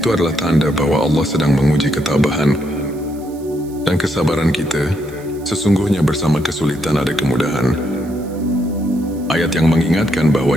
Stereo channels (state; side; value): noise; right; hiss, 24 dB below the sound